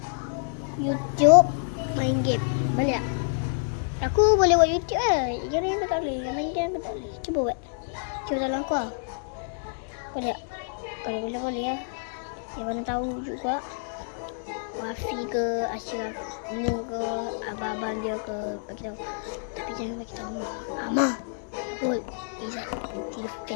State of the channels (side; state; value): right; silent; 60 dB below the other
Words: YouTube main game. Boleh tak? Aku boleh buat YouTube lah. Yang lain aku tak boleh. Yang main game aku tak boleh. Cuba buat. Cuba tolong aku lah. Boleh tak? Kalau boleh lah. Yang mana tahu juga. Wafi ke, Ashraf ni ke, abang-abang dia ke, bagi tahu. Tapi jangan bagi tahu Amah. Betul. Izzat